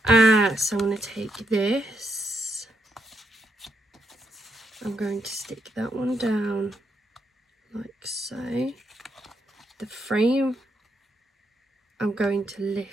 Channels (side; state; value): both; normal; correlation 0.79